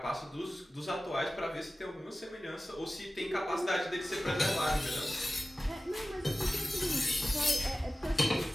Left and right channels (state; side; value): normal; both; correlation 0.96